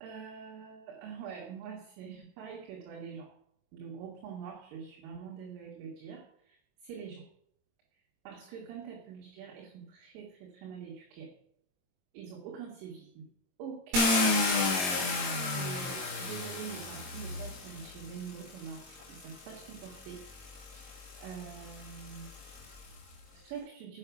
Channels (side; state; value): left; late; 22 ms